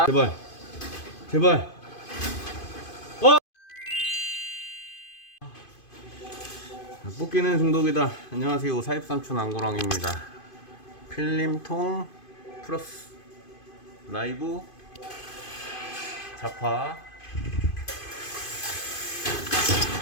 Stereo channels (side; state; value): right; late; 2.5 ms